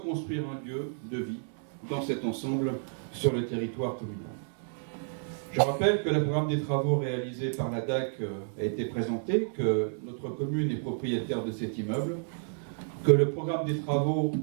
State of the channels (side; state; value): left; silent; digital silence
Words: un lieu de vie dans cet ensemble sur le territoire communal. Je rappelle que le programme des travaux réalisés par la DAC a été présenté, que notre commune est propriétaire de cet immeuble, que le programme des travaux